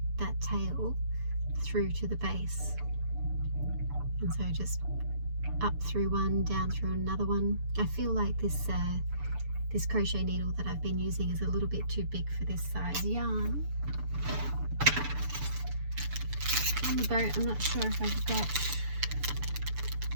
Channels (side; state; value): left; late; 6.9 ms